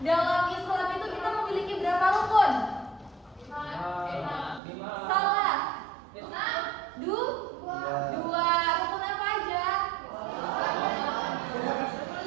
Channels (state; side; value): drops out; left; at 4.6 s